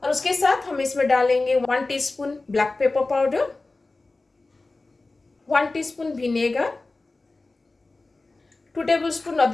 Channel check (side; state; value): right; quieter; 3.3 dB